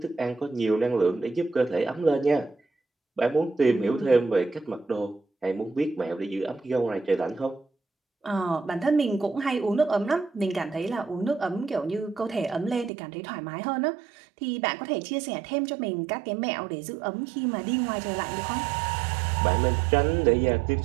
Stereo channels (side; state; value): left; drops out; at 12.9 s